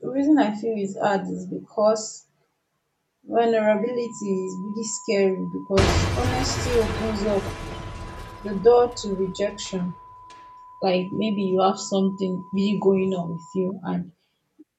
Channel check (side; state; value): both; identical; correlation 1.00